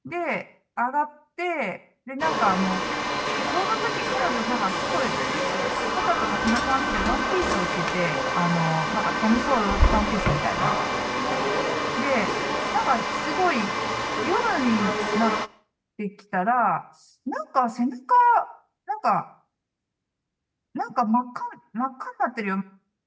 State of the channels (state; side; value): identical; both; correlation 1.00